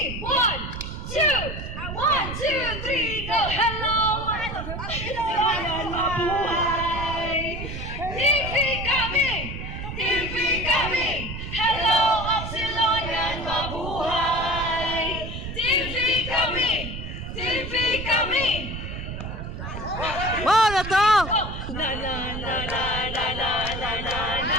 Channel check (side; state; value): right; noise; rumble, 7 dB below the sound